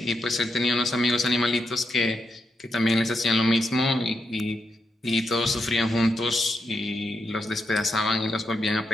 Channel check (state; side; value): normal; both; correlation 0.83